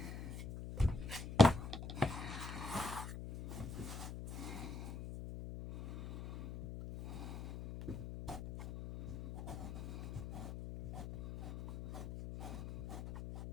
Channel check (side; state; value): left; noise; hum, 7 dB below the sound